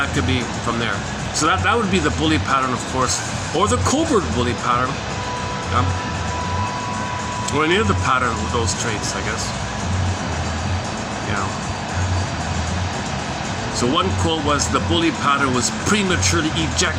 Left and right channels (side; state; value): both; identical; correlation 1.00